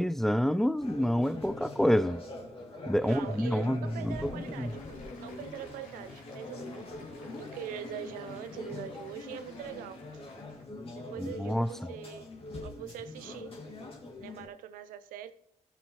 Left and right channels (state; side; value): normal; both; correlation 0.91